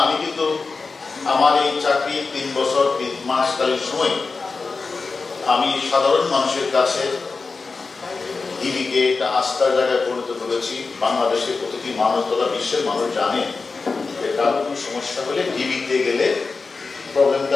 আমি কিন্তু আমার এই চাকরি 3 বছর 3 মাসকালীন সময় আমি সাধারণ মানুষের কাছে ডিবিকে একটা আস্থার জায়গায় পরিণত করেছি। বাংলাদেশের প্রতিটি মানুষ তথা বিশ্বের মানুষ জানে যে কারো কোনো সমস্যা হলে ডিবিতে গেলে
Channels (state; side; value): quieter; right; 4.3 dB